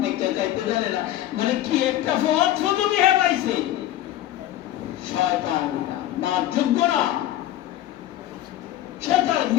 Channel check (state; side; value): quieter; right; 13.4 dB